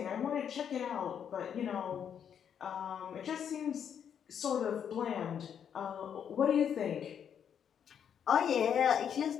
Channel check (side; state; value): right; quieter; 8.3 dB